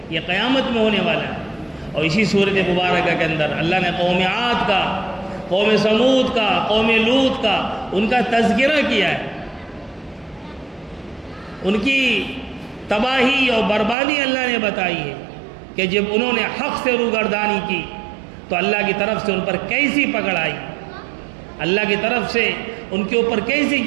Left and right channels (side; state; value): left; drops out; at 14.0 s